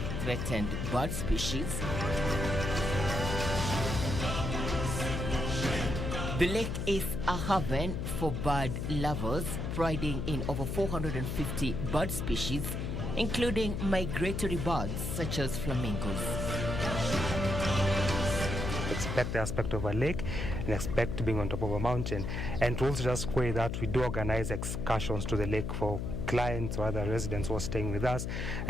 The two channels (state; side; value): noise; left; hum, 3 dB below the sound